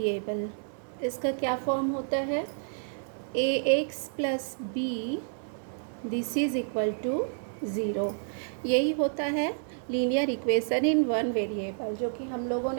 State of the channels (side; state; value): left; silent; digital silence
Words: इसका क्या फॉर्म होता है, a x plus b this is equal to zero. यही होता है linear equation in one variable, जो कि हम लोगों